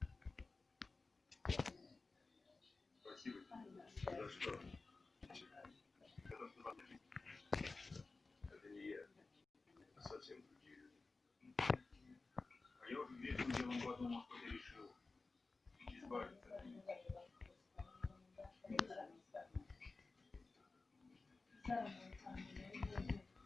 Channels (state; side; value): quieter; right; 3.7 dB